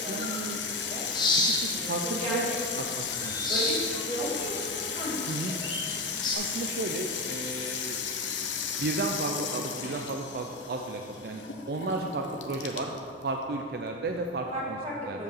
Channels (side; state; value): both; normal; correlation 0.15